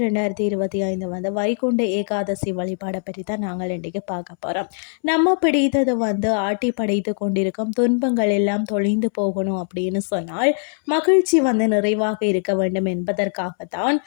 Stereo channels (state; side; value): silent; right; 65 dB below the other